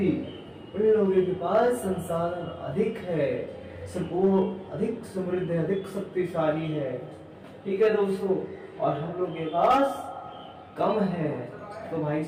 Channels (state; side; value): identical; both; correlation 1.00